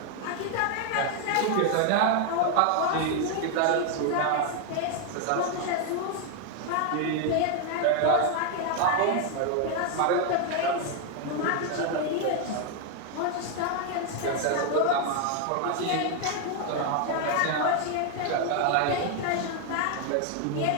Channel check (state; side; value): different; both; correlation 0.01